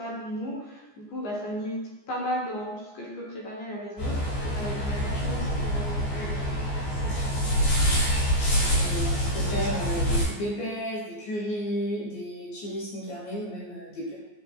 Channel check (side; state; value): right; late; 14 ms